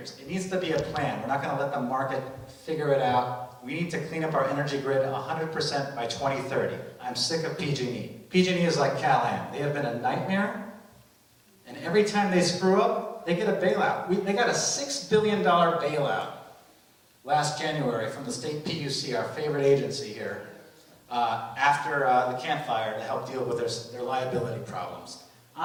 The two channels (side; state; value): both; identical; correlation 1.00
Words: It needs to be a plan. We're not going to let the market figure it out. We need to clean up our energy grid 100% by 2030. I'm sick of PG&E. PG&E is like Cal-Am. They have been a nightmare, and every time they screw up, they get a bailout. They got a $6 billion bailout last January from the state PUC, our favorite agency here, after the Camp Fire to help deal with their liability problems.